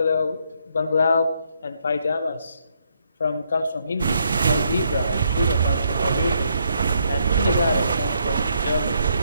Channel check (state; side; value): inverted; both; correlation -0.74